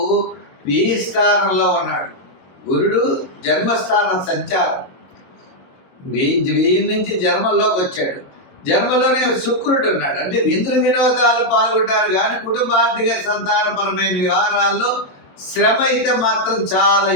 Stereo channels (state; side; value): late; right; 22 ms